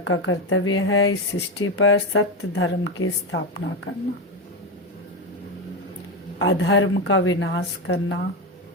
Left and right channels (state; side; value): normal; both; correlation 0.13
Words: कर्तव्य है इस सृष्टि पर सत्य धर्म की स्थापना करना, अधर्म का विनाश करना,